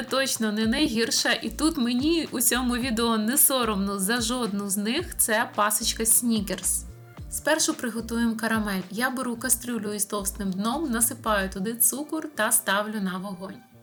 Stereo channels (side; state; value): both; identical; correlation 1.00